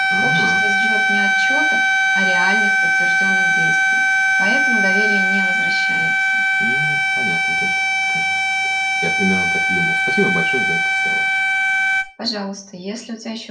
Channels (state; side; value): identical; both; correlation 1.00